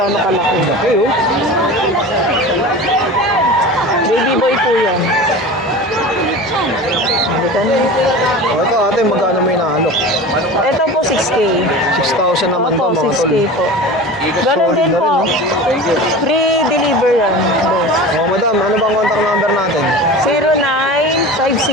kalaki. Okay, oh. Baby boy po yan. Halika na. Ito, ate, magkano may naalok? Ito po 6K. 6,000 naman to, Opo, mga tol. 6K po. Ganon din po. Free deliver yan. boss. Oh, madam, ano bang contact number natin?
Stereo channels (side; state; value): both; normal; correlation 0.34